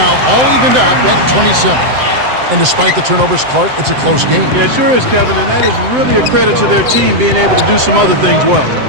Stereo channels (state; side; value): late; left; 7.8 ms